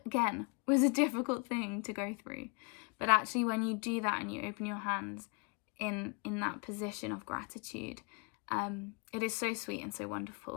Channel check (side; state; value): right; quieter; 33.6 dB